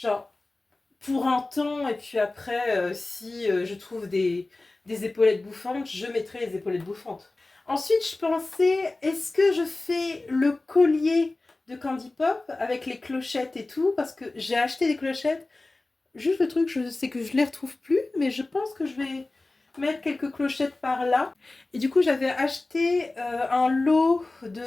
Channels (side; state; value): right; quieter; 3.1 dB